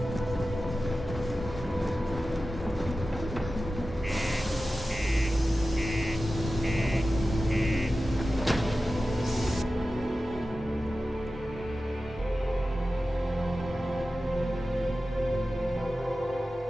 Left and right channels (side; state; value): both; normal; correlation 0.94